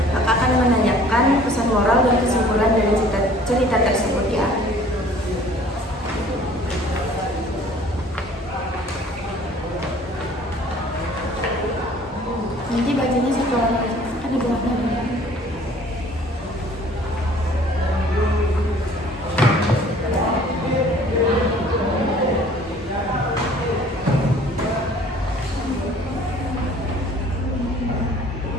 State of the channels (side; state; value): both; normal; correlation 0.53